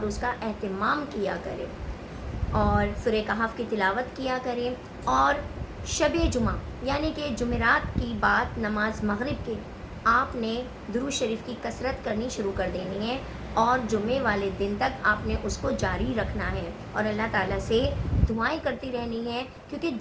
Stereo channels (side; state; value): both; identical; correlation 1.00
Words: اس کا اہتمام کیا کریں، اور سورہ کہف کی تلاوت کیا کریں، اور شب جمعہ یعنی کہ جمعرات کی بعد نماز مغرب کے آپ نے درود شریف کی کثرت کرنی شروع کر دینی ہے، اور جمعے والے دن تک آپ نے اس کو جاری رکھنا ہے، اور اللہ تعالیٰ سے دعائیں کرتی رہنی ہے، کیونکہ